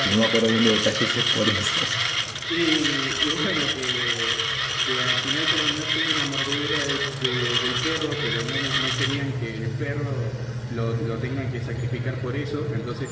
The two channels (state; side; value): identical; both; correlation 1.00